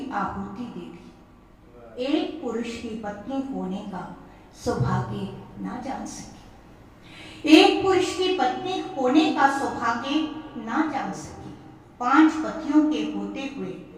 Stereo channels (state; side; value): identical; both; correlation 1.00